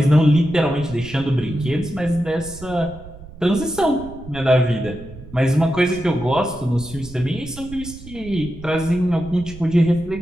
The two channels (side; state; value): right; noise; rumble, 16 dB below the sound